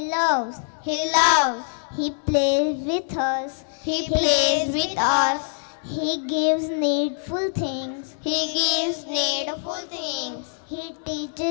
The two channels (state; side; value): silent; right; digital silence